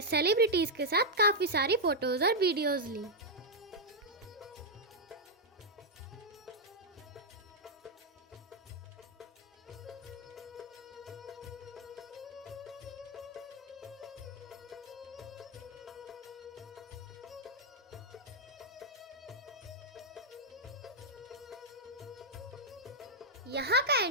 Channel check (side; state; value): both; normal; correlation -0.04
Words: सेलिब्रिटीज के साथ काफी सारी फोटोज और वीडियोज ली। यहाँ का